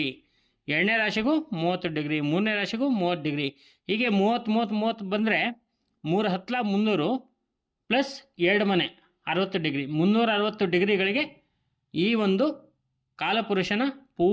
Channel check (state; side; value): identical; both; correlation 1.00